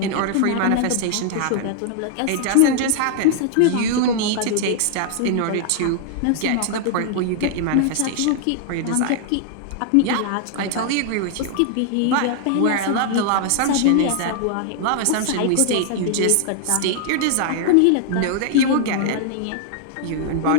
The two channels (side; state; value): both; different; correlation 0.00